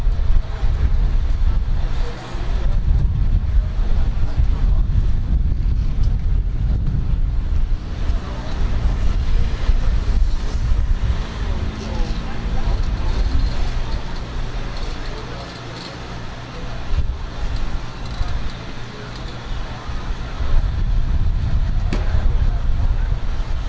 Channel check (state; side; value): identical; both; correlation 1.00